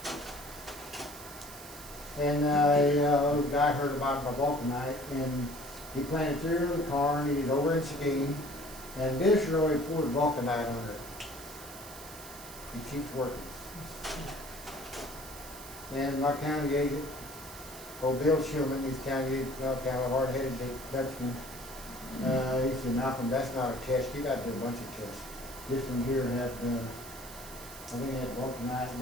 And a guy heard about my vulcanite, and he planted 3 rows of corn. He's over in Seguin. And this really poured vulcanite under it. He keeps working. And my county agent, old Bill Schumann, he's county agent, kind of a hard-headed Dutchman. He said, Malcom, that's not a test. You got to do a bunch of tests. This one here had, I think it had vulcanite, and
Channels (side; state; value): right; noise; hiss, 14 dB below the sound